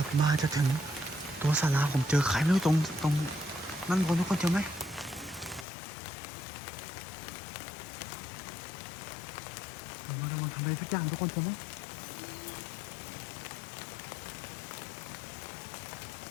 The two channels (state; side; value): drops out; right; at 5.7 s